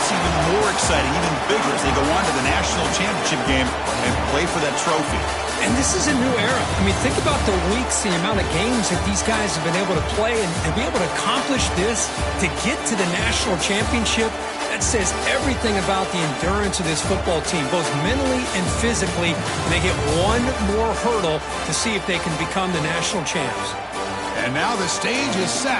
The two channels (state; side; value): identical; both; correlation 1.00